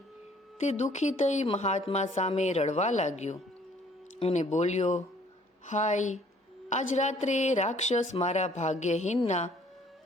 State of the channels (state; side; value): normal; both; correlation 0.59